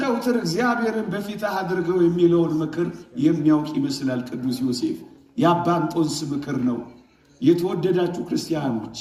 እግዚአብሔርን በፊትህ አድርገው የሚለውን ምክር የሚያውቅ ይመስላል ቅዱስ ዮሴፍ። የአባ እንጦንስ ምክር ነው። የተወደዳችሁ ክርስቲያኖች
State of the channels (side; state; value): both; identical; correlation 1.00